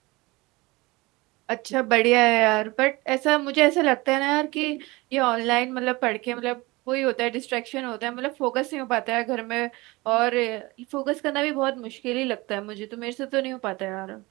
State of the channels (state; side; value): quieter; left; 22.6 dB